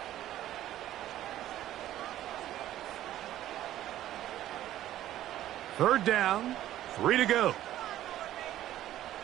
Third down, 3 to go.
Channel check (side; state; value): left; quieter; 13.2 dB